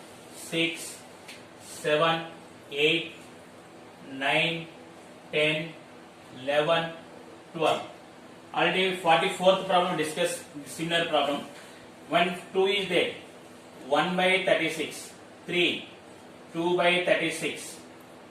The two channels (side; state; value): both; identical; correlation 1.00